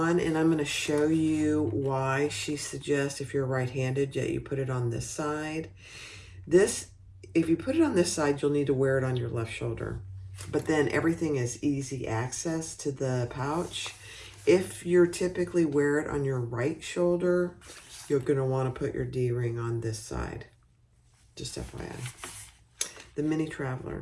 and I'm going to show you why she suggests if you're right-handed that you put it on this side. If you put it on this side, you'll need to wear it on your left shoulder. But then everything is easy access to the pouch. If you're typically wear it on your right shoulder, you're going to want to put your D-ring on this side. Just FYI. The Mini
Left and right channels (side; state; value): both; identical; correlation 1.00